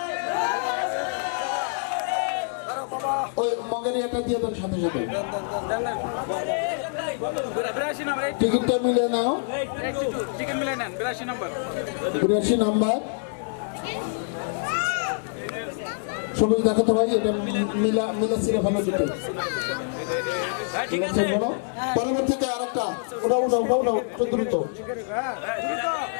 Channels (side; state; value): right; silent; 61 dB below the other